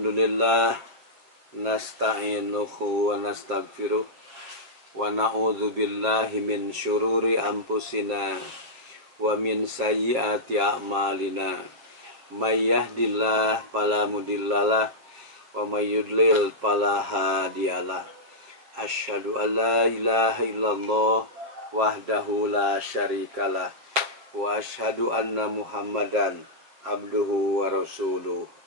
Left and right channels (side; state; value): left; late; 7.2 ms